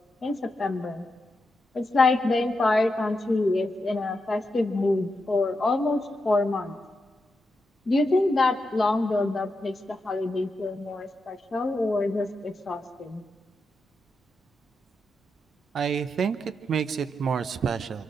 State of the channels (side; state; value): both; normal; correlation 0.86